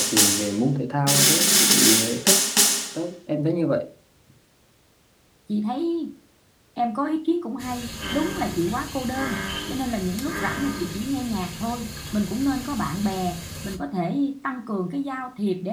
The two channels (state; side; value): identical; both; correlation 1.00